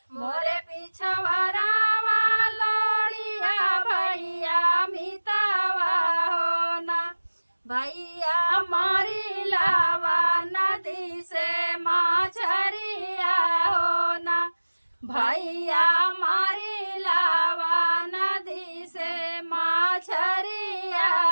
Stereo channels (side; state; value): both; inverted; correlation -1.00